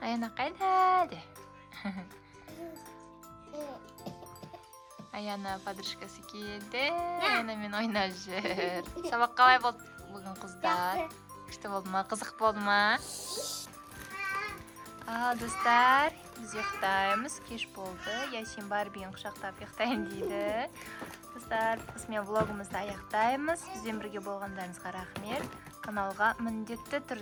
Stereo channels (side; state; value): both; identical; correlation 1.00